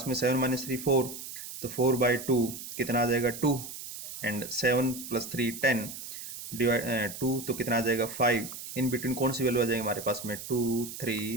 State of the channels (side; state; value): right; noise; hiss, 10 dB below the sound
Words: में 7 - 3 4, तो 4/2 कितना आ जाएगा 2, एंड 7 + 3 10 डिवाइड 2 तो कितना आ जाएगा 5, इन बिटवीन कौन सी वैल्यू आ जाएगी हमारे पास में 2